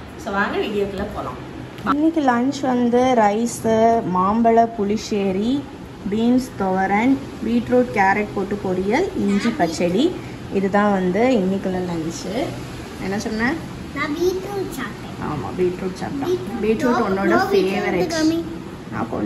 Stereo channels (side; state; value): both; identical; correlation 1.00